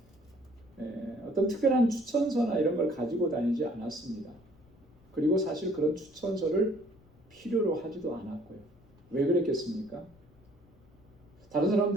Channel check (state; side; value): noise; left; rumble, 28 dB below the sound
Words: 어떤 특별한 추천서나 이런 걸 가지고 다니지 않았습니다. 그리고 사실 그런 추천서를 필요로 하지도 않았고요. 왜 그랬겠습니까? 다른